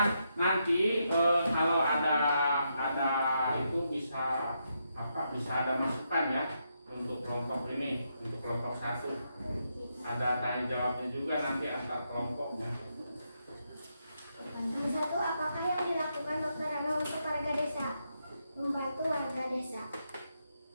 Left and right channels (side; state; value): both; inverted; correlation -0.81